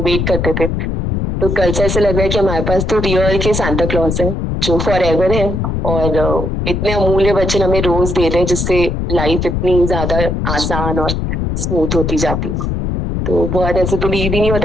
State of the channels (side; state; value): left; noise; rumble, 1 dB below the sound